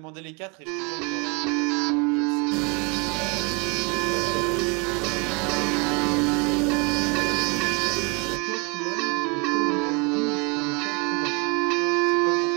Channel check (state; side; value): quieter; left; 31.6 dB